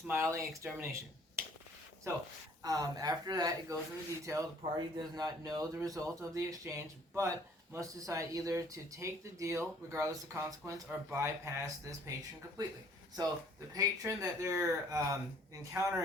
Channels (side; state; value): both; normal; correlation 0.58